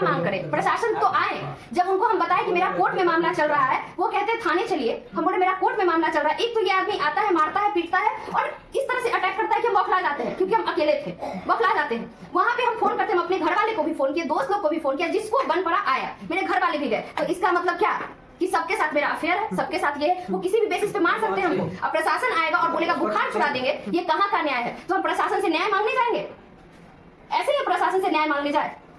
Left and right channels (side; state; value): both; identical; correlation 1.00